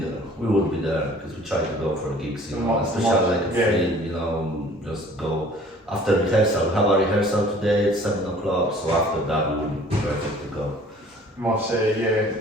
We would be there because we try to go for gigs, especially like a free, just go after rehearsal. We have a rehearsal today at 7 o'clock, so after that we would be perfect to go.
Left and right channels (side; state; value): both; normal; correlation 0.51